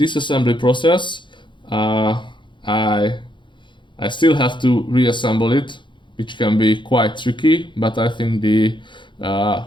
process. I still have to reassemble it, which can be quite tricky, but I think the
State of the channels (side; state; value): right; late; 0.23 ms